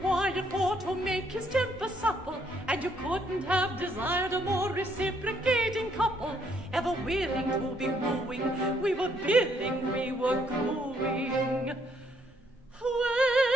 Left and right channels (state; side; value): normal; both; correlation 0.70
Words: for to make his temper supple, and you couldn't have desired a more reciprocating couple, ever willing to be wooing. We were billing, we were cooing.